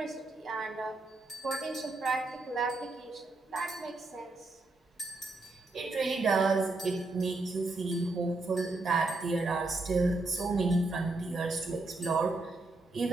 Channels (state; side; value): quieter; left; 3.1 dB